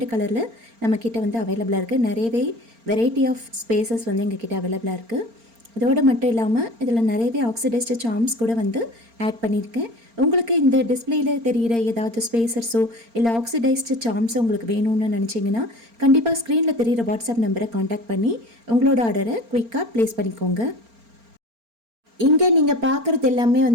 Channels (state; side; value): late; left; 4.4 ms